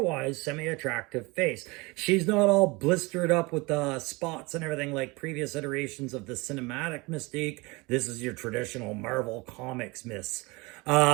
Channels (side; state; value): left; quieter; 25.0 dB